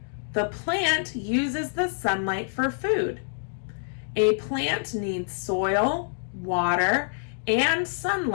The plant uses the sunlight for food. A plant needs soil, water, and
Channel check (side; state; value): right; silent; digital silence